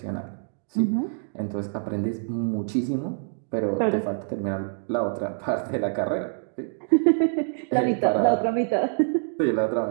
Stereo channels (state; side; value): silent; left; digital silence